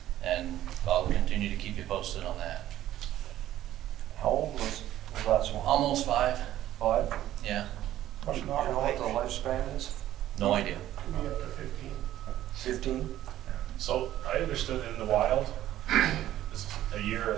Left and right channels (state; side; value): quieter; left; 13.2 dB